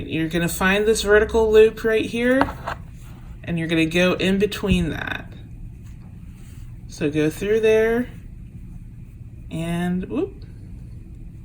you're gonna find this vertical loop right here, and you're going to go in between that. So go through there, and whoop,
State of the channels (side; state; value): both; identical; correlation 1.00